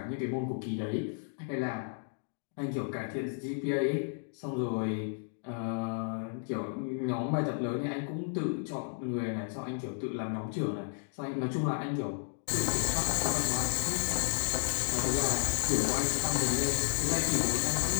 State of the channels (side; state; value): right; silent; digital silence